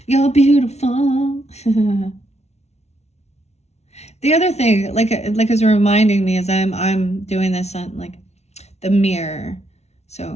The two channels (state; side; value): late; right; 0.31 ms